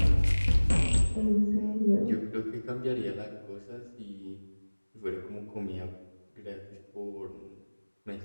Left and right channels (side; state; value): both; inverted; correlation -1.00